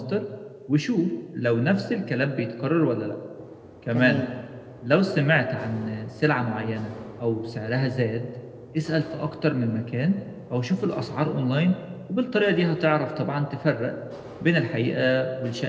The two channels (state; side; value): identical; both; correlation 1.00